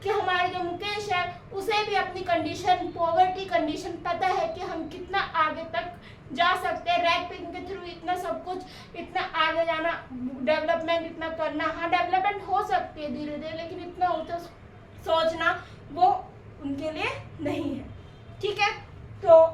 कि हमारे जो मुकेश है उसे भी अपनी कंडीशन पॉवर्टी कंडीशन पता है कि हम कितना आगे तक जा सकते हैं, रैक पिकिंग के थ्रू इतना सब कुछ, इतना आगे जाना, डेवलपमेंट इतना करना, हाँ डेवलपमेंट हो सकती है धीरे धीरे, लेकिन इतना होता सोचना वो उनके लिए नहीं है। ठीक है, तो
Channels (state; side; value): identical; both; correlation 1.00